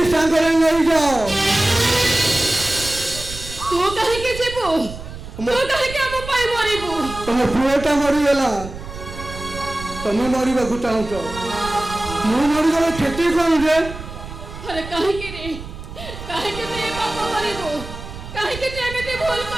ସାଙ୍ଗରେ ନେଇଯାଅ। ତୁ କାହିଁକି ଯିବୁ? ତୁ କାହିଁକି ଆମ ପାଇଁ ମରିବୁ? ତମ ପୁଅଟା ମରିଗଲା, ତମେ ମରିବାକୁ ଚାହୁଁଛ, ମୁଁ ମରିଗଲେ କ୍ଷତି କଣ ଯେ? ଆରେ କାହିଁକି ରେ? କାହିଁକି ତୁ ଏ ପାପ କରିବୁ? କାହିଁକି ତୁ ଏମିତି ଭୁଲ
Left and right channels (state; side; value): noise; right; rumble, 12 dB below the sound